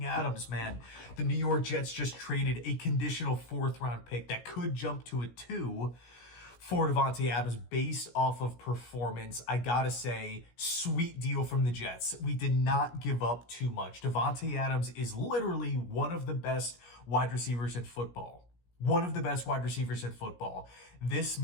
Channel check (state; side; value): late; right; 17 ms